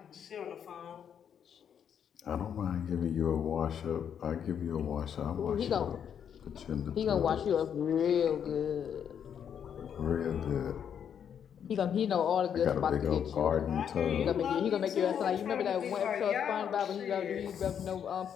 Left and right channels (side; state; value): right; quieter; 8.3 dB